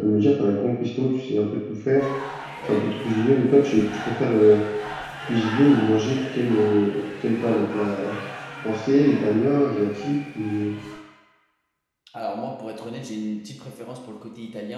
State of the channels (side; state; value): both; identical; correlation 1.00